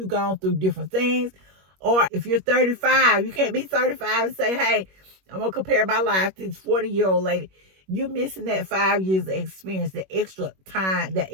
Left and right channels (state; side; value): late; left; 21 ms